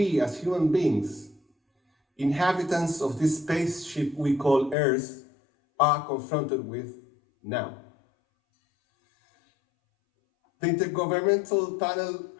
as human beings, inhabitants of this spaceship we call Earth, are confronted with now. The Intergovernmental Panel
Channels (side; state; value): right; drops out; at 4.8 s